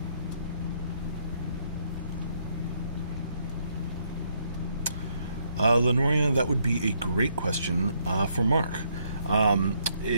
Lenoria, that would be a great question for Mark.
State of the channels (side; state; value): both; inverted; correlation -0.72